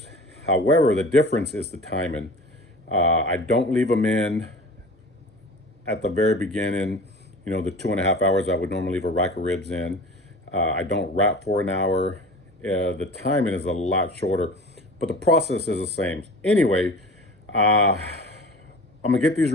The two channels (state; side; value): normal; both; correlation 0.39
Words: However, the difference is the timing. I don't leave them in at the very beginning, the 2.5 hours I would normally leave a rack of ribs in. I don't wrap for an hour. The timing is a lot shorter, but the process is the same. Anyway, I'm gonna get these